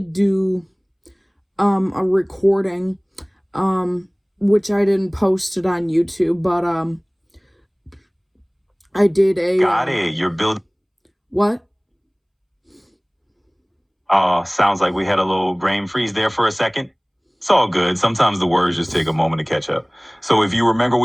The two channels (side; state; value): both; identical; correlation 1.00